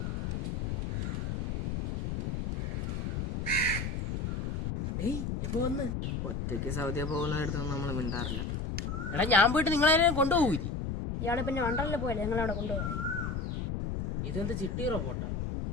എപ്പോ വന്ന്? ഒറ്റയ്ക്ക് സൗദിയ പോകുന്നിടത്തൊന്നും നമ്മൾ മിണ്ടാറില്ല. എടാ ഞാൻ പോയിട്ട് നിങ്ങളെ കൊണ്ടുപോകൂലി. ഇയാളെ പിന്നെ വണ്ടറിൽ പോയല്ലേ നിങ്ങളവിടെ കൊണ്ടുപോകാൻ. ഇതെന്ത് ചിട്ടി റോബോട്ടാ?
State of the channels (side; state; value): left; noise; rumble, 2 dB below the sound